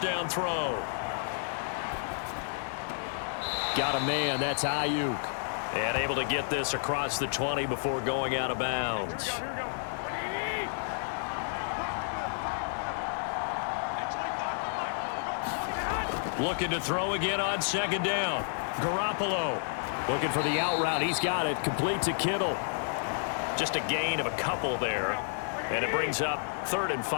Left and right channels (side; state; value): right; silent; digital silence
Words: down throw. Got a man, that's Ayuk. And able to get this across the 20 before going out of bounds. Looking to throw again on 2nd down. Garoppolo. Looking for the out route. He's got it. Complete to Kittle. Just a gain of a couple there. And it brings up 3rd and